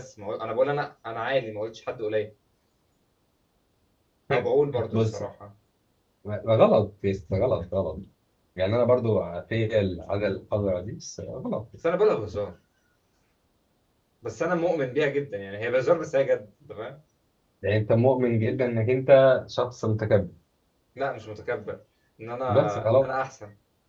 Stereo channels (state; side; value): identical; both; correlation 1.00